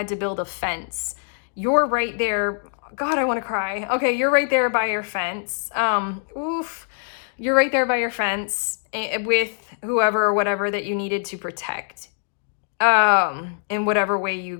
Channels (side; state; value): right; silent; digital silence